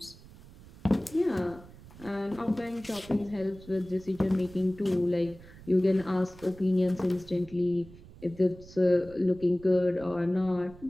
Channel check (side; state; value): right; noise; rumble, 20 dB below the sound